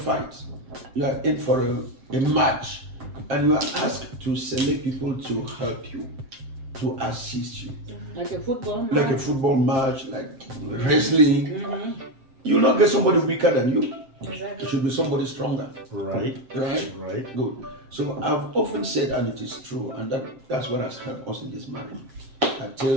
you are in for a match, and you are asked to select people to help you, to assist you. Like a football match. Like a football match, like wrestling. You will not get somebody weaker than you. Exactly. It should be somebody stronger. Right. Good. So I've often said, and it is true, and that's what has helped us in this marriage. I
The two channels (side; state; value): left; late; 7.6 ms